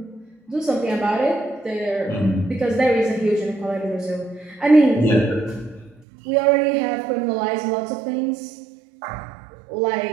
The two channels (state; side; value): drops out; left; at 6.1 s